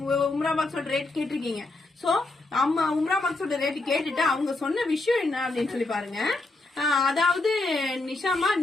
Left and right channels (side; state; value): right; quieter; 3.1 dB